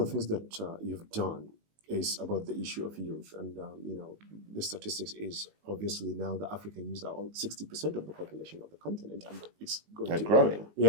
things that you've done is about the issue of youth. And, the statistics is obviously now the African youth are all 60% of the population of the continent, and it's going to growing.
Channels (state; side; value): late; left; 19 ms